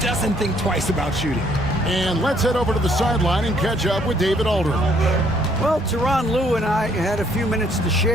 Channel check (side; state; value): both; normal; correlation 0.66